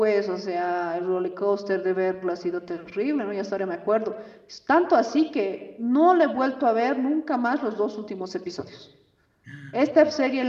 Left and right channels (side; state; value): both; identical; correlation 1.00